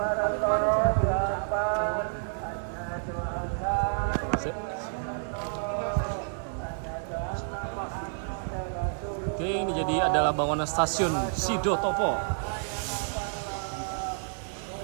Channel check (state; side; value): silent; left; digital silence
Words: Oke, ini jadi adalah bangunan stasiun Sidotopo.